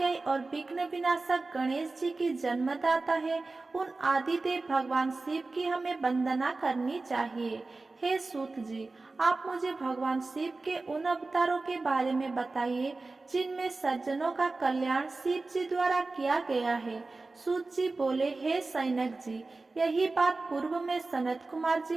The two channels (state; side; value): quieter; left; 3.5 dB